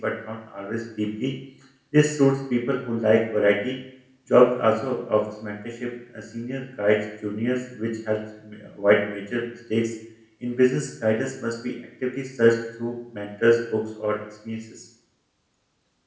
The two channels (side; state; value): both; identical; correlation 1.00